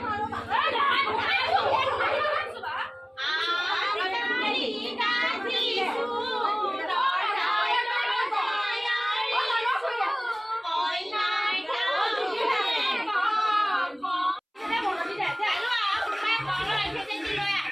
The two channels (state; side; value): identical; both; correlation 1.00